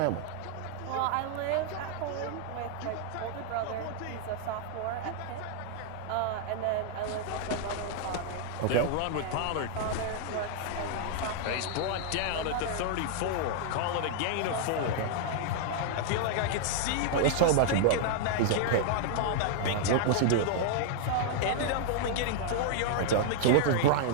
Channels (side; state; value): both; different; correlation -0.01